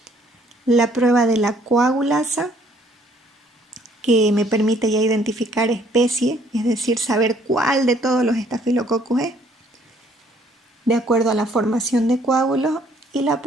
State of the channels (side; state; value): both; normal; correlation 0.63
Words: La prueba de la coagulasa, que me permite ya identificar especie, es decir, saber cuál de todos los Staphylococcus es, de acuerdo a la formación de coágulos, y la